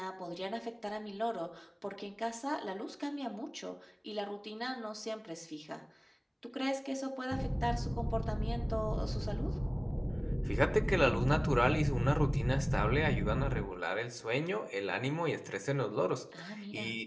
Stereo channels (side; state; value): both; identical; correlation 1.00